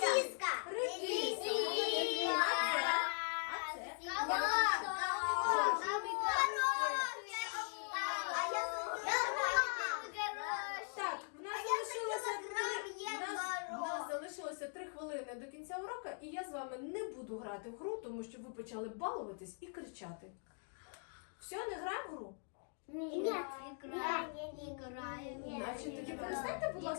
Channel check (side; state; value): right; silent; 51 dB below the other